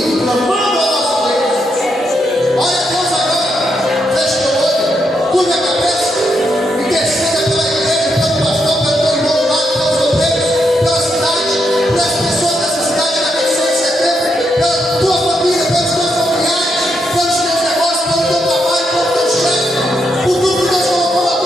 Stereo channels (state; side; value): normal; both; correlation 0.80